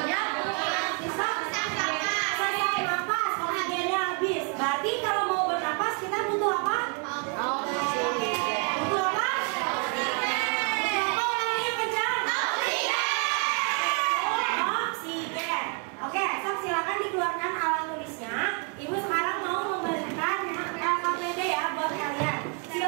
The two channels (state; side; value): quieter; left; 37.4 dB